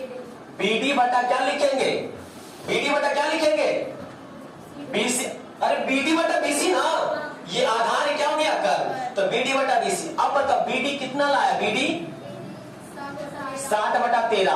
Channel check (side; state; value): both; identical; correlation 1.00